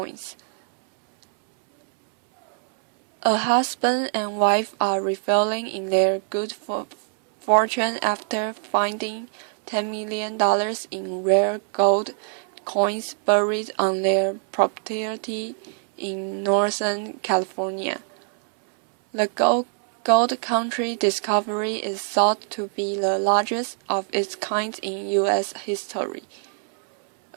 A husband and wife are reveling in their good fortune after finding $10 million in rare gold coins buried on their property in Northern California. The gold country discovery is thought to be the largest of its kind in U.S. history.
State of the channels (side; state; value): left; silent; 63 dB below the other